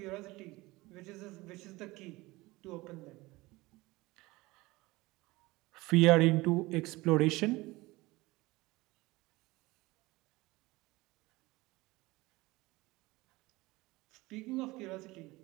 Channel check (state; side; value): quieter; left; 21.0 dB